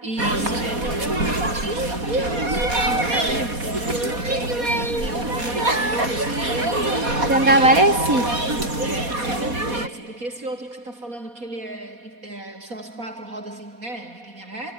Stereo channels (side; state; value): left; late; 4.2 ms